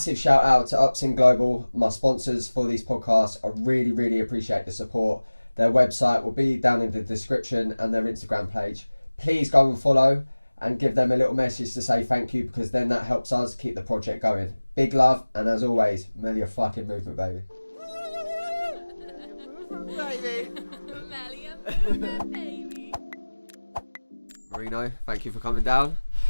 shout out to Upsin Global, my sponsors for these podcasts. I really appreciate the support. Their website will be down in the description and their Instagram page. Please go and follow and give them a little message to say thank you, because then that helps us keep the project going. Big love, and as always, Melio fucking movement, baby. Melio movement, baby. Marino, thank you for coming down.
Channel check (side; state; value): both; inverted; correlation -1.00